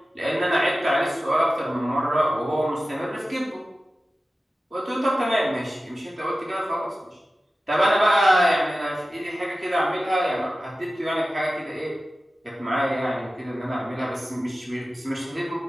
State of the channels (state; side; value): normal; both; correlation 0.95